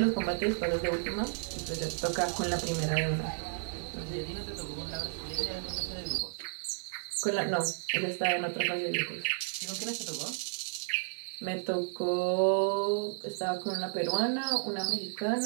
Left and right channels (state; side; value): silent; left; digital silence